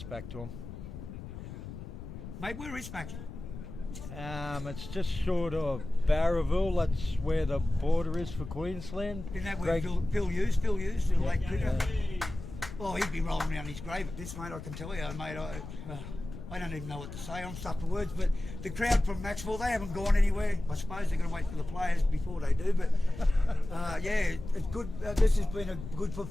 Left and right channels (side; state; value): left; noise; rumble, 11 dB below the sound